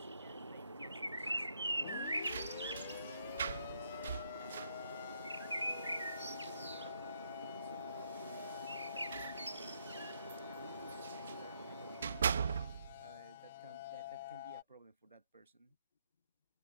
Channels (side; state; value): both; inverted; correlation -0.74